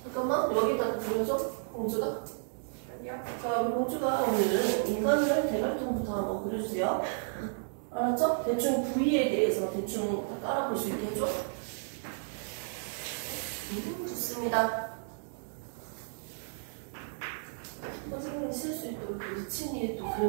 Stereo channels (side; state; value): left; silent; digital silence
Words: 잠깐만 여기다가 그려줘. 공주가. 여기요? 자, 우리 공주가 오늘은 인간을 대갈통부터 한번 그려주세요. 알았죠? 대충 부위에 대해서 대충 다 깔아볼 수 있게 해줘. 좋습니다. 선생님이 쓸 수 있도록 리치니 또